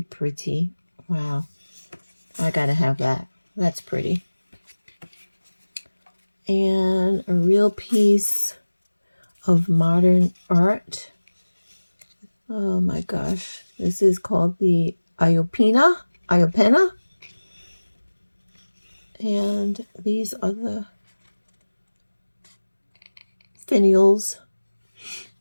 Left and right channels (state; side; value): inverted; both; correlation -1.00